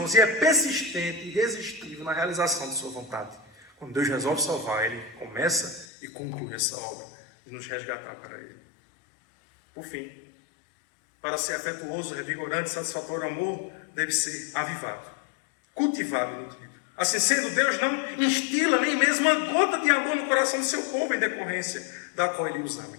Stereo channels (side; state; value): right; drops out; at 5.9 s